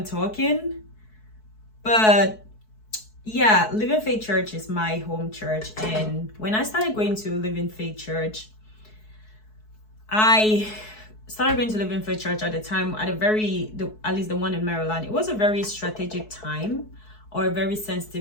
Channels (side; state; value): right; late; 4.6 ms